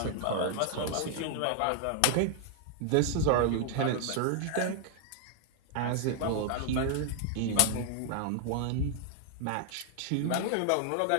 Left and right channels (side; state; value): both; different; correlation 0.00